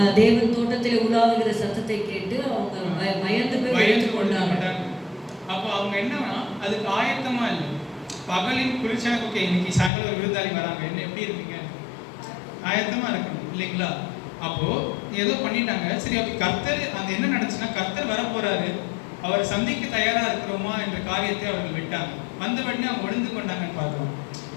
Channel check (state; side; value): drops out; right; at 9.9 s